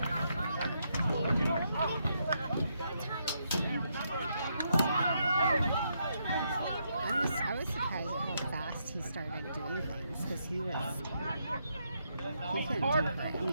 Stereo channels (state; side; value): inverted; both; correlation -0.78